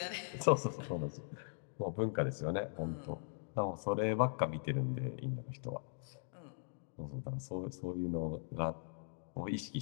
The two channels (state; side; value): silent; right; digital silence